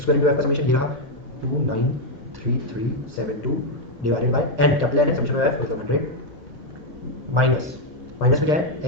square into f का समेशन ये रहा 2933372 divided by N, capital N है, समेशन ऑफ एफ मतलब 100 माइनस माइनस में क्या है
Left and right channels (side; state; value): both; normal; correlation 0.01